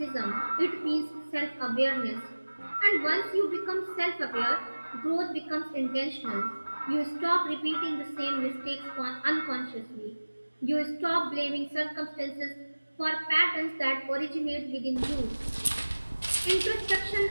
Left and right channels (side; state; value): both; inverted; correlation -1.00